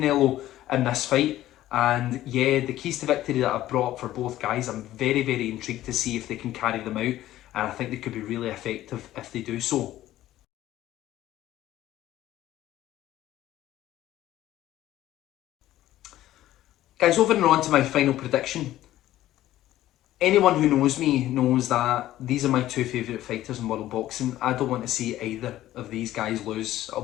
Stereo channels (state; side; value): quieter; right; 14.2 dB